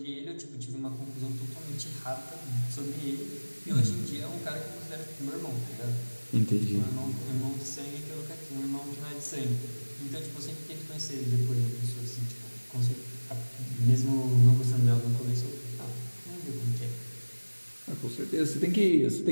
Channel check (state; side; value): inverted; both; correlation -1.00